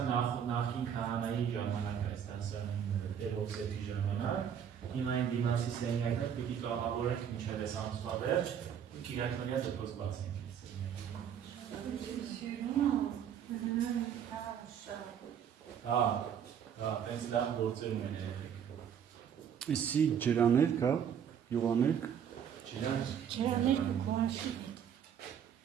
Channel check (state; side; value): quieter; left; 8.4 dB